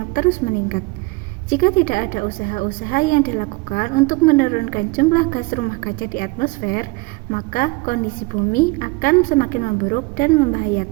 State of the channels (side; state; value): left; quieter; 25.1 dB